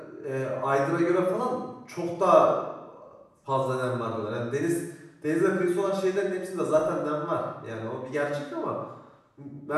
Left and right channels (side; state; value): both; identical; correlation 1.00